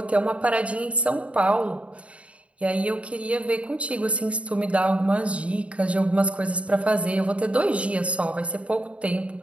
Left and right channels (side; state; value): left; late; 0.063 ms